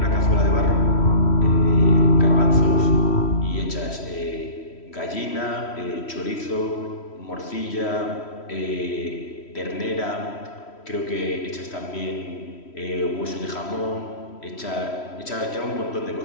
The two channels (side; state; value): right; late; 3.1 ms